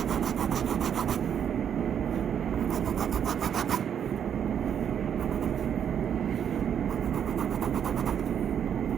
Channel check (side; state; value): left; quieter; 8.5 dB